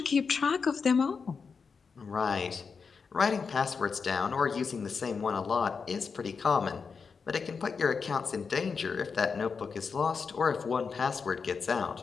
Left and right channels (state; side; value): quieter; right; 5.4 dB